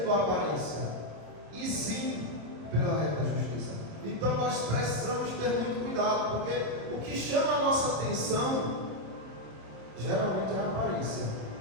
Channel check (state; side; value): late; left; 26 ms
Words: a aparência, e sim pela reta justiça. Então nós precisamos ter muito cuidado, porque o que chama a nossa atenção geralmente é a aparência,